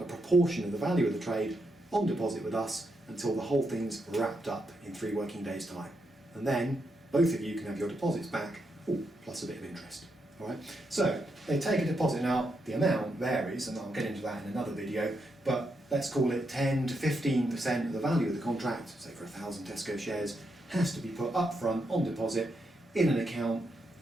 a proportion of the value of the trade on deposit with us until the whole thing's wrapped up in 3 working days' time. And then both of you can have your deposits back, plus a bit of interest. All right? So they take a deposit. Now the amount varies, and I'll get into that in another video, but let's call it 10 to 15% of the value of the contract, say for 1,000 Tesco shares, has to be put up front on deposit in an account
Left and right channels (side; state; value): both; normal; correlation 0.82